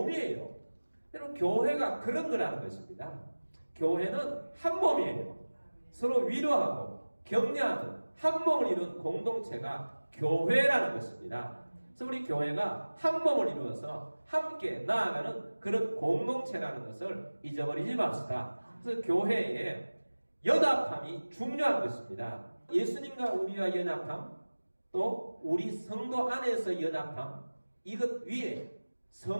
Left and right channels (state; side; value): inverted; both; correlation -1.00